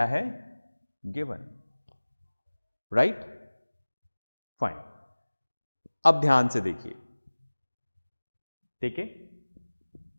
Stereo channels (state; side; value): inverted; both; correlation -1.00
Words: है, गिवन, राइट, फाइन। अब ध्यान से देखिए, ठीक है,